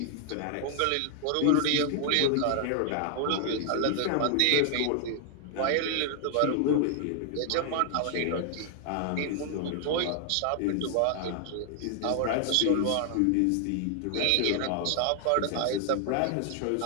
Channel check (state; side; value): different; both; correlation 0.00